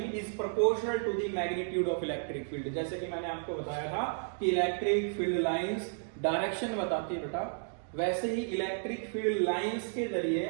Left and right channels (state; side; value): silent; left; digital silence